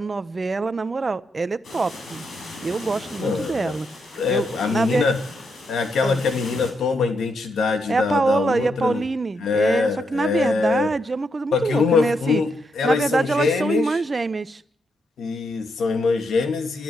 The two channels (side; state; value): both; normal; correlation 0.80